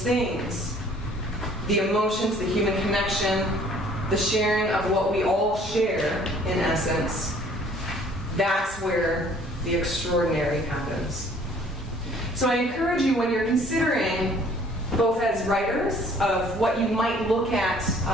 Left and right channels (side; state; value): both; normal; correlation 0.56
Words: things, the emotions, the human connection, the sharing of what we all share, in essence, that's where the extraordinary happens. So I encourage you, when you're considering, both as writers, of what you might look at